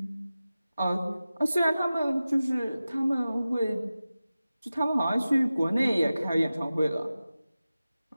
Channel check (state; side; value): inverted; both; correlation -0.95